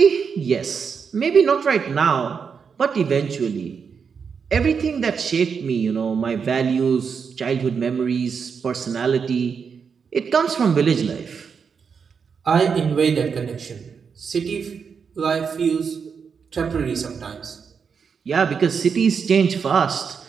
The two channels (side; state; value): left; quieter; 6.2 dB